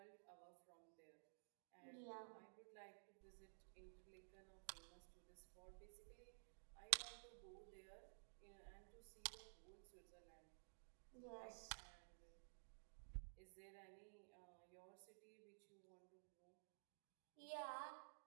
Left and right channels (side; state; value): left; silent; digital silence